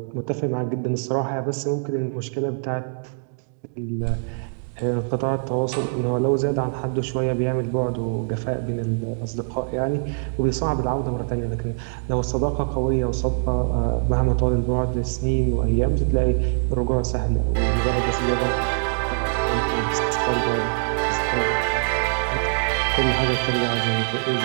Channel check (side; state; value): left; silent; digital silence